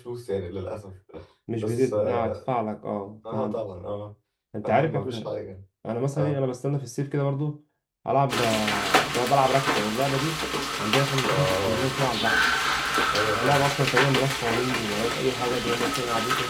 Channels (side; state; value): both; identical; correlation 1.00